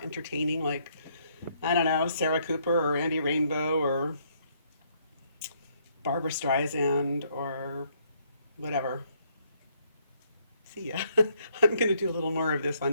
entertaining like, I don't know, Sarah Cooper or Andy Rainbow or Barbra Streisand or whatever, see ya. I'm going to do a little more of this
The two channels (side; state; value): both; inverted; correlation -0.69